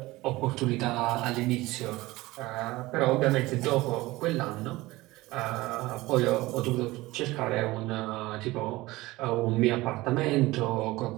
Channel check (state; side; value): quieter; left; 19.6 dB